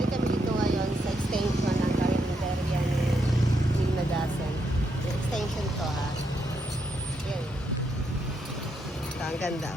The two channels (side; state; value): both; normal; correlation 0.79